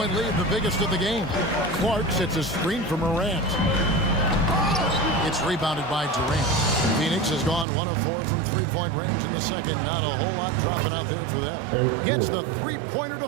lead, the biggest of the game. Clark sets a screen for Morant. It's rebounded by Durant. Phoenix has gone 1 of 4 from 3-point range in the second. Not a whole lot dropping out there for them. Gets the 3-pointer to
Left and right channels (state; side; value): drops out; left; at 7.7 s